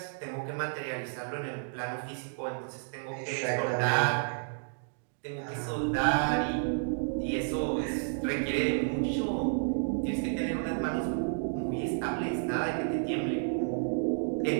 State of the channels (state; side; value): silent; left; digital silence